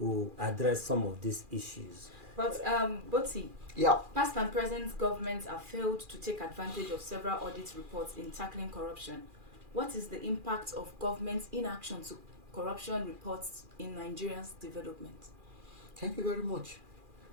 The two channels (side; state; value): left; late; 2.4 ms